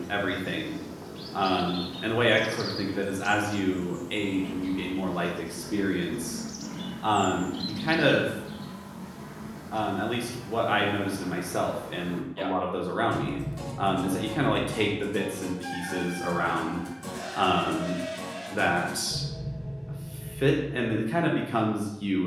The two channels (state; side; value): identical; both; correlation 1.00